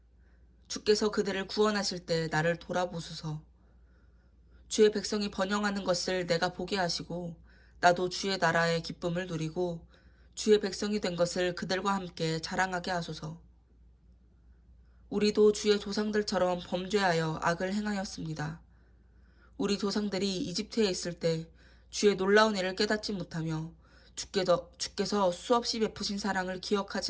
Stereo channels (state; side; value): identical; both; correlation 1.00